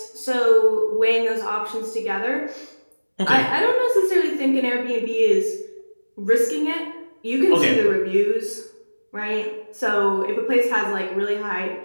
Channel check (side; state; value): both; inverted; correlation -1.00